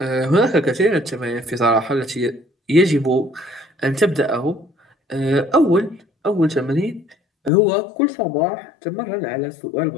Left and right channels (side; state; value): right; drops out; at 7.5 s